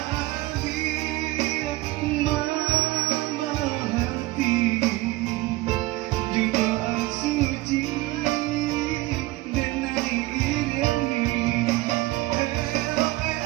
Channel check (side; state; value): left; quieter; 19.2 dB